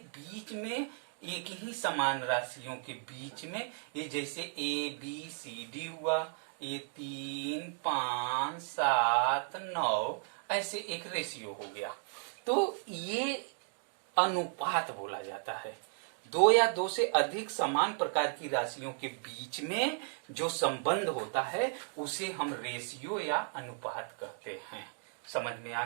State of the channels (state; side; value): silent; left; 55 dB below the other